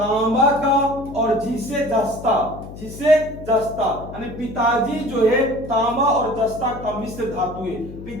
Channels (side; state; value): left; noise; hum, 13 dB below the sound